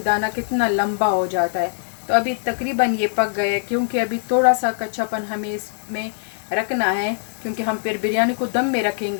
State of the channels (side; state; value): right; silent; 64 dB below the other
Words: दाना कितना लंबा हो जाता है। तो अभी तकरीबन ये पक गए, क्योंकि अभी थोड़ा सा कच्चापन हमें इसमें रखना है, क्योंकि हम फिर बिरयानी को दम में